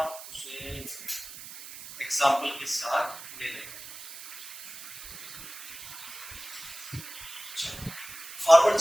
उसे एग्जांपल के साथ ले लेंगे। फॉरवर्ड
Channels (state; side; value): noise; right; hiss, 12 dB below the sound